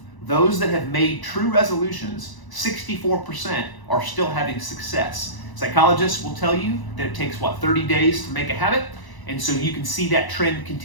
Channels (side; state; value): right; late; 1.0 ms